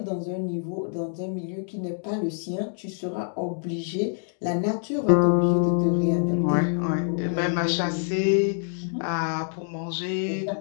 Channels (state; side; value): silent; right; digital silence